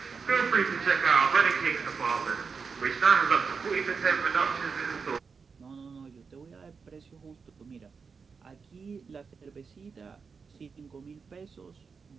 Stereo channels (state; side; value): quieter; left; 5.4 dB